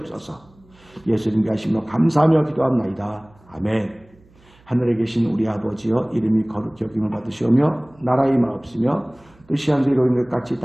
예수님께 하시며 감사하며 기도합나이다. 아멘. 하늘에 계신 우리 아버지여 이름이 거룩히 여김을 받으시오며 나라의 마옵시며 뜻이 하늘에서 이루어진 것 같이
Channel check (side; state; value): right; noise; hum, 29 dB below the sound